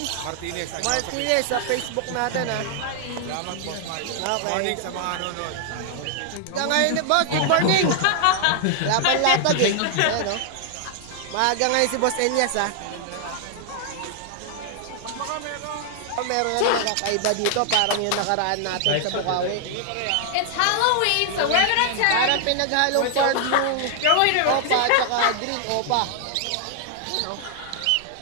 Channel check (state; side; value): different; both; correlation 0.00